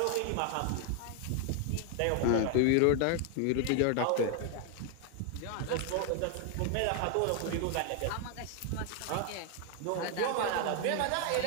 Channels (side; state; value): both; different; correlation 0.00